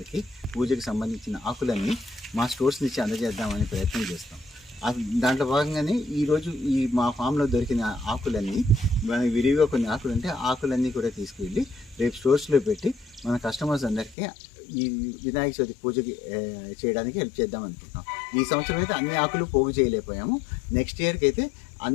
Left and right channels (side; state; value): right; drops out; at 14.2 s